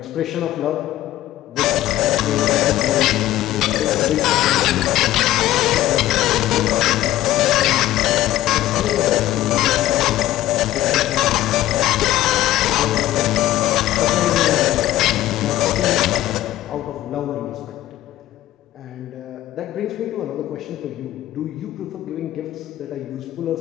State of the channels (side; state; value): right; quieter; 14.5 dB